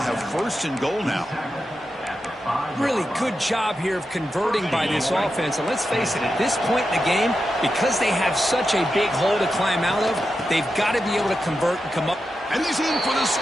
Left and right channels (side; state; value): both; normal; correlation 0.89